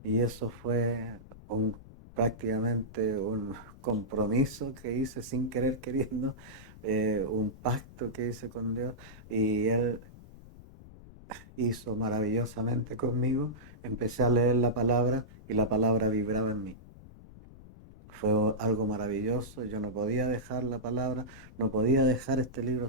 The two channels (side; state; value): left; noise; rumble, 19 dB below the sound